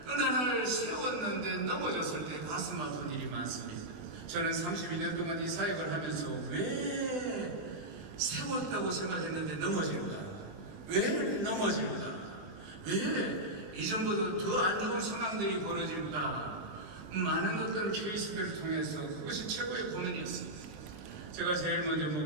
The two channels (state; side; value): late; left; 20 ms